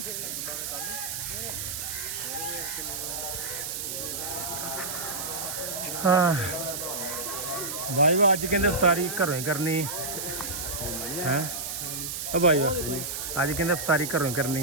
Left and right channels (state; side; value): noise; right; hiss, 4 dB below the sound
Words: ਹਾਂ ਬਾਈ ਵਾ ਅੱਜ ਕਹਿੰਦੇ ਇਫਤਾਰੀ ਘਰੋਂ ਹੀ ਕਰਨੀ ਹੈ ਆ ਬਾਈ ਵਾ ਅੱਜ ਕਹਿੰਦੇ ਇਫਤਾਰੀ ਘਰੋਂ ਹੀ